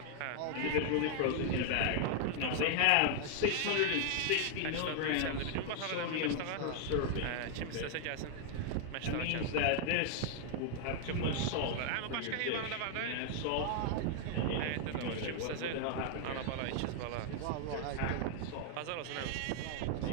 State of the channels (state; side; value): different; both; correlation 0.00